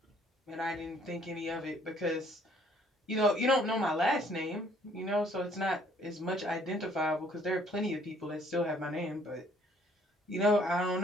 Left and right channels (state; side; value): normal; both; correlation 0.61